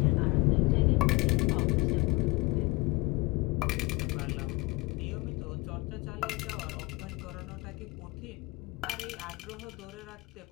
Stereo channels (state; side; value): quieter; right; 23.5 dB